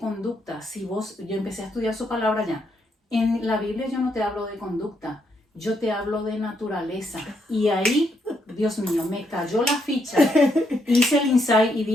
Yo empecé a estudiar su palabra ya. En la Biblia yo no te hablo de conducta, yo te hablo de naturaleza. Y ahí, Dios mío, me cayó la ficha. Hice el insight y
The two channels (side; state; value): both; normal; correlation 0.77